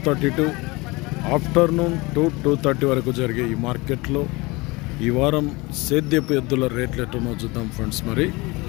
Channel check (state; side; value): quieter; right; 24.1 dB